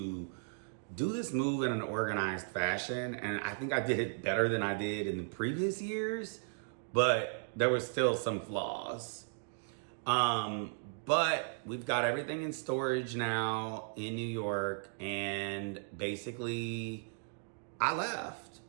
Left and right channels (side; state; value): left; silent; digital silence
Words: do this move in an organized fashion, and I think I did it better than I did in the previous years, but there were still some flaws. But we've got everything in storage now in New York, and basically I left.